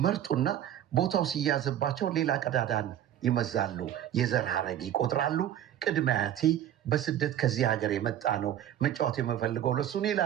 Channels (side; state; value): left; quieter; 11.1 dB